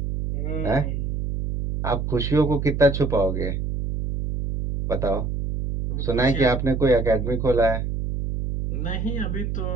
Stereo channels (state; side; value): noise; right; hum, 2 dB below the sound